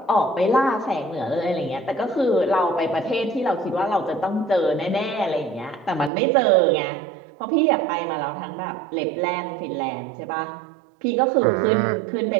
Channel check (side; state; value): left; drops out; at 6.1 s